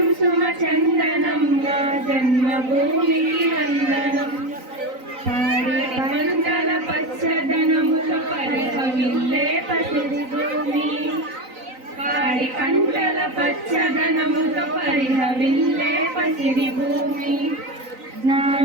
సుమచందనం నా జన్మభూమికి వందనం. పాడి పంటల పచ్చదనములు పరిహవిల్లే పసిరి భూమి, పాడి పంటల పచ్చదనముతో పరిహవిల్లే పసిరి భూమి.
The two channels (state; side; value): late; left; 3.9 ms